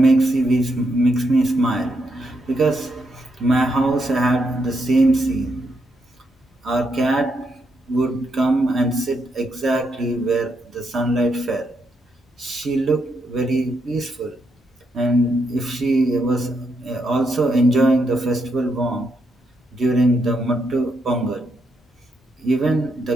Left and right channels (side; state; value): both; normal; correlation 0.80